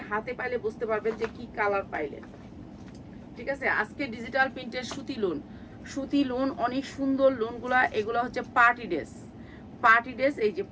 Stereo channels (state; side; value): identical; both; correlation 1.00